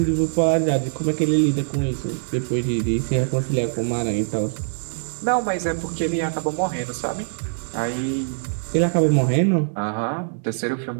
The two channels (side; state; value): left; silent; digital silence